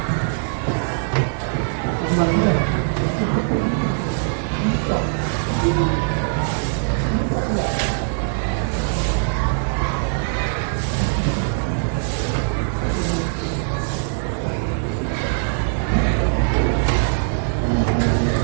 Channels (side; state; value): left; silent; digital silence